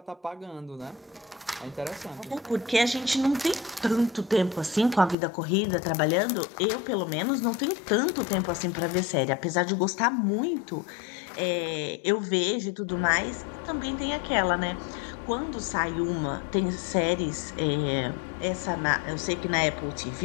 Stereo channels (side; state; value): right; drops out; at 5.2 s